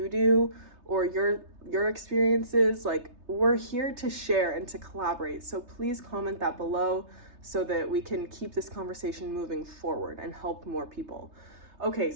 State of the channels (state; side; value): late; left; 3.3 ms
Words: do or your experiences, like, we're here to share and to collaborate. So please comment that below so that we can keep this conversation moving forward and help more people. Okay,